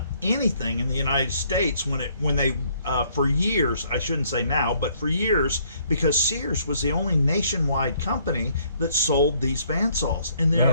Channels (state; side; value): inverted; both; correlation -0.65